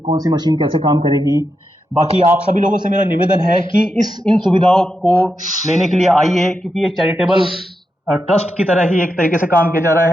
कौन सी मशीन कैसे काम करेगी। बाकी आप सभी लोगों से मेरा निवेदन है कि इन सुविधाओं को लेने के लिए आइए, क्योंकि ये चैरिटेबल ट्रस्ट की तरह ही एक तरीके से काम किया जा रहा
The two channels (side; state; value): both; normal; correlation 0.86